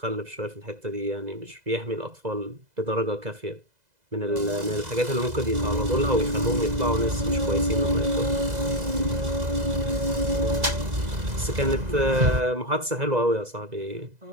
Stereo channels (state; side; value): late; left; 2.0 ms